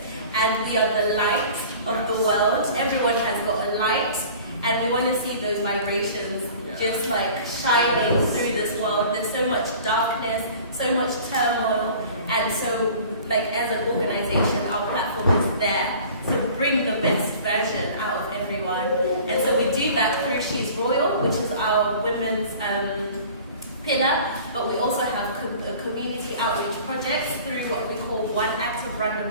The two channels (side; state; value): both; inverted; correlation -0.45